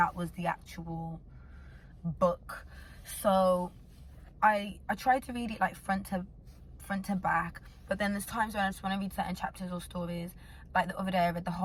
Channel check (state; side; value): identical; both; correlation 1.00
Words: was the actual book. So I try to read it like front to back, but then there's times when I just want to read certain chapters or stories. Like the other day I read the